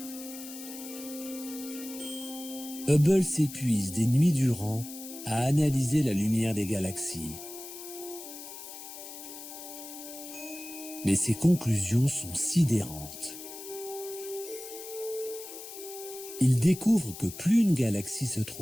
Hubble s'épuise des nuits durant à analyser la lumière des galaxies. Mais ses conclusions sont sidérantes. Il découvre que plus une galaxie se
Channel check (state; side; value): noise; left; hiss, 12 dB below the sound